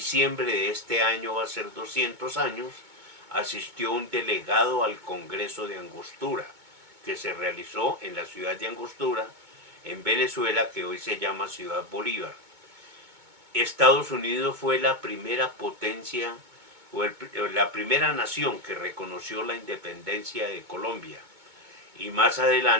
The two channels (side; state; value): left; late; 2.2 ms